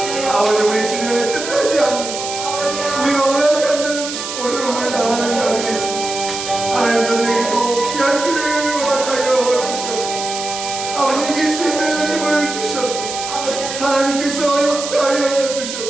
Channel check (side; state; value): right; noise; hiss, 7 dB below the sound